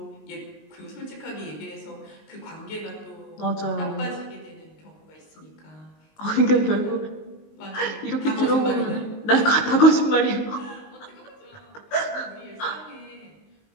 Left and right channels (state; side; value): late; right; 19 ms